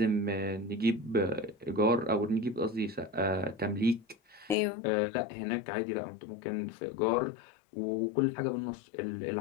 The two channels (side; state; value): right; drops out; at 4.5 s